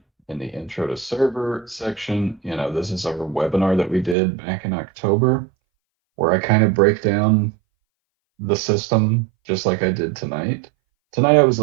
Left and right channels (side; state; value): left; drops out; at 4.2 s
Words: the intro to server section, this is our webinar that we did back in October, where I kind of break down the system just like I did tonight. Tonight I was a